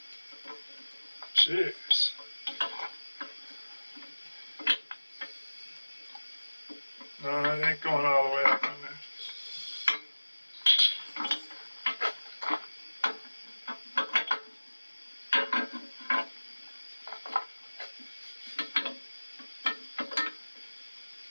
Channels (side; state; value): both; inverted; correlation -1.00